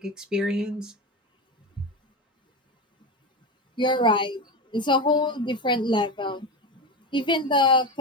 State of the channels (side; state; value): both; normal; correlation 0.19